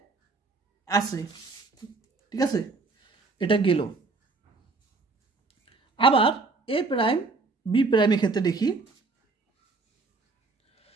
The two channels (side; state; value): left; quieter; 3.9 dB